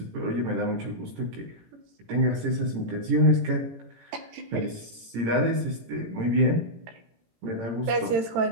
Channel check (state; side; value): late; left; 18 ms